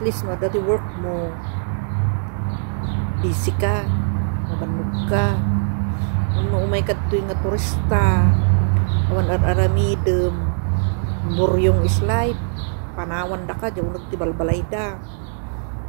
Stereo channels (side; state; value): left; silent; digital silence